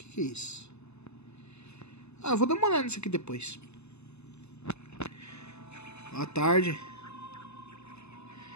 é isso? Ah, eu vou dar uma olhada nisso aqui depois. Boa tarde.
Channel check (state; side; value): late; right; 0.80 ms